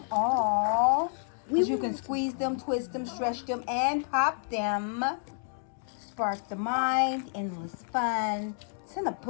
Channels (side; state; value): right; silent; digital silence